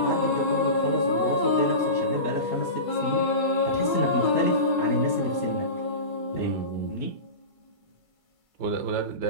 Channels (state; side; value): late; right; 2.3 ms